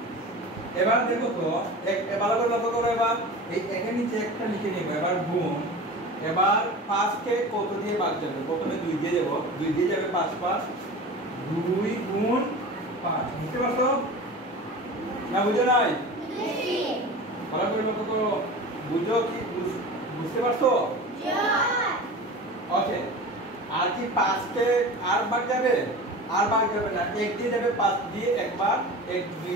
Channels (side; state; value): both; normal; correlation 0.34